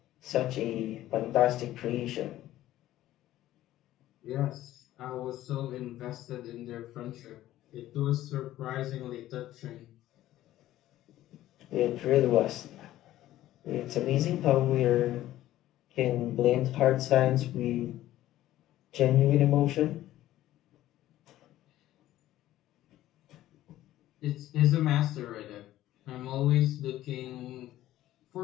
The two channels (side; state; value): right; quieter; 14.3 dB